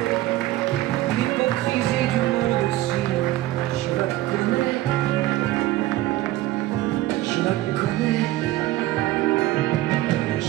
L'hypocrisie du monde aussi, je la connais. Je la connais. Je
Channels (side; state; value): left; quieter; 16.3 dB